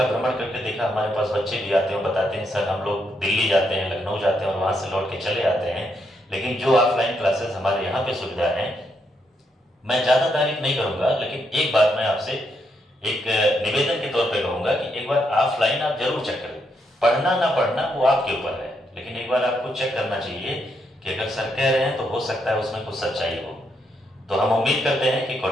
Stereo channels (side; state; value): both; normal; correlation 0.78